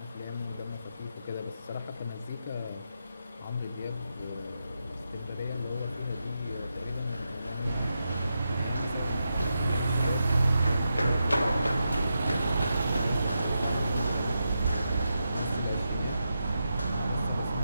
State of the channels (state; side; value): inverted; both; correlation -0.86